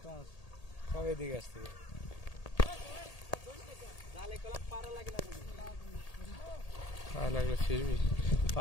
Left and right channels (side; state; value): right; late; 1.8 ms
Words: সব এদিকে আসছে লাগলো ফিরবি